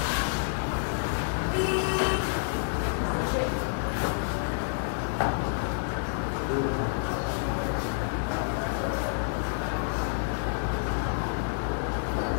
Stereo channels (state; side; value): silent; right; 59 dB below the other